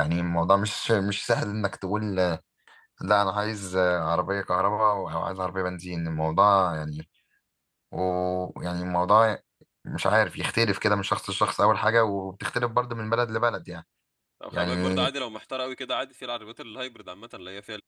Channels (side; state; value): both; identical; correlation 1.00